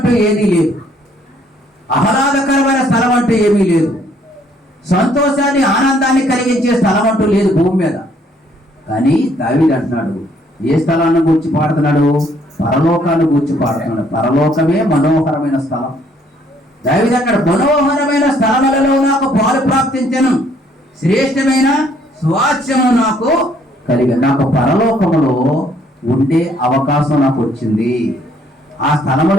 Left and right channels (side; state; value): both; normal; correlation 0.65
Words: ఏదీ లేదు, ఆహ్లాదకరమైన స్థలం అంటూ ఏమీ లేదు, సంతోషాన్ని ఆనందాన్ని కలిగించే స్థలం అంటూ లేదు భూమి మీద. కానీ దావీదు అంటున్నాడు, ఏ స్థలాన్ని గూర్చి పాడుతున్నాడు? పరలోకాన్ని గూర్చి పాడుతున్నాడు. పరలోకమే మనోహరమైన స్థలం. దావీదు అన్నాడు, మనోహరమైన స్థలములలో నాకు పాలు ప్రాప్తించెను, శ్రేష్టమైన స్వాస్థ్యము నాకు కలిగి, నాకు పరలోకములో ఉండే అవకాశం నాకు వచ్చింది. ఆ